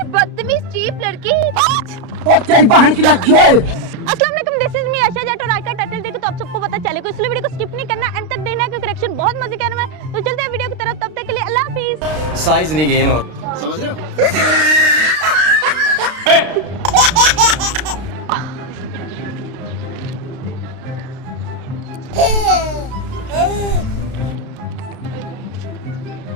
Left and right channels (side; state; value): left; late; 32 ms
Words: बदतमीज चीप लड़की। तेरी बहन की लग गई। अस्सलाम वालेकुम, दिस इज मी आशा जट और आज का टाइटल देखो तो आप सबको पता चलेगा, इसलिए वीडियो को स्किप नहीं करना, एंड तक देखना क्योंकि करेक्शन बहुत मजे का है। तो चलते हैं वीडियो की तरफ, तब तक के लिए अल्लाह हाफिज। साइज नहीं गेन हो, समझ रहे हो?